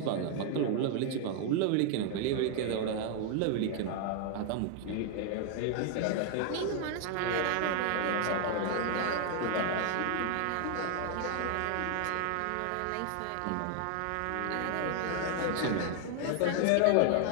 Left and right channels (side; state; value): both; different; correlation 0.00